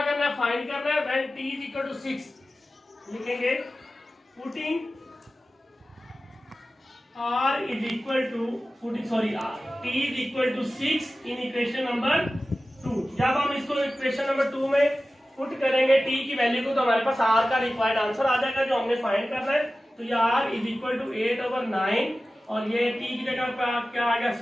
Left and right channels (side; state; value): both; normal; correlation 0.95